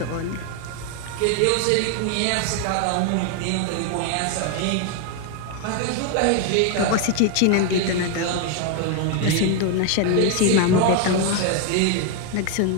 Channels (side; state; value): both; different; correlation 0.01